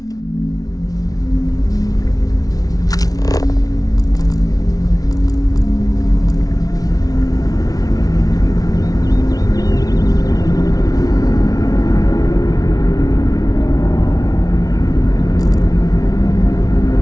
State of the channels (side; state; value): right; late; 0.18 ms